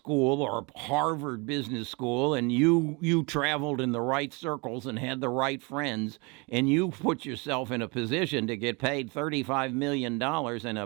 or Harvard Business School and you traveled in the right circles and had the right friends and you put yourself in a position to get paid $35 million in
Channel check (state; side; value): quieter; left; 29.2 dB